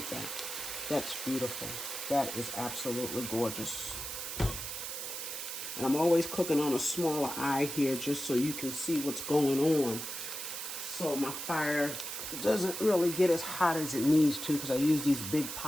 that. That's beautiful. That is absolutely gorgeous. And I'm always cooking on a smaller eye here just so you can see what's going on. So my fire doesn't really get as hot as it needs to because I use these big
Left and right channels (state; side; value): noise; right; hiss, 6 dB below the sound